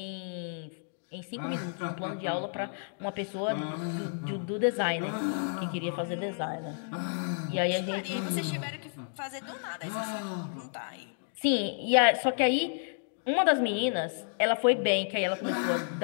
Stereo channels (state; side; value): silent; right; digital silence